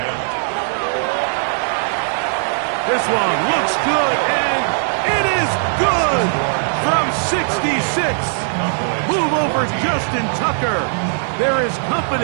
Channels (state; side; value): silent; left; digital silence